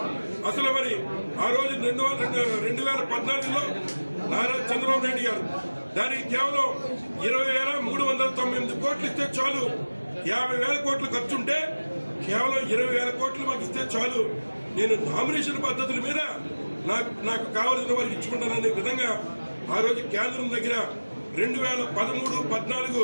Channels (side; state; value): both; inverted; correlation -1.00